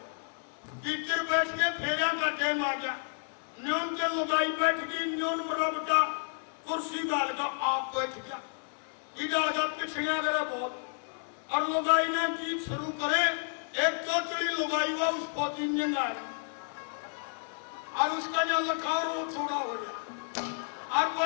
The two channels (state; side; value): silent; right; 57 dB below the other